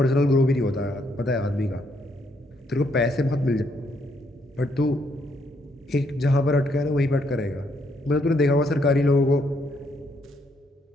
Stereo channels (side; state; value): both; normal; correlation 0.73